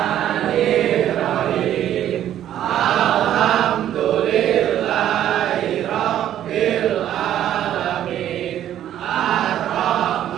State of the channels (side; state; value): left; quieter; 11.4 dB